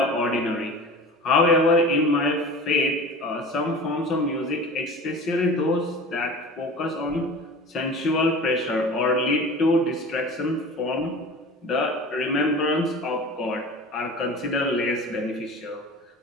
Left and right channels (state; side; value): normal; both; correlation 0.37